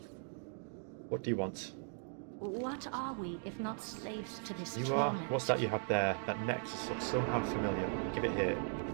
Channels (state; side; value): silent; left; 52 dB below the other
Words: What do you want? What are we if not slaves to this You torment? are? What's that you have there? That necklace looks somehow familiar. Give it here.